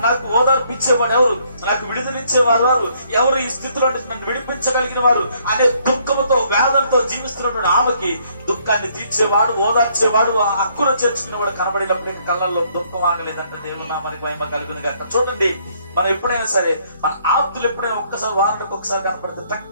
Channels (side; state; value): both; inverted; correlation -0.67